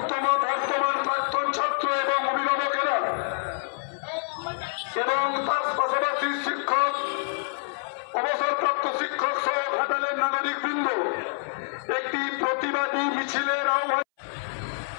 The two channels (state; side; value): silent; right; 60 dB below the other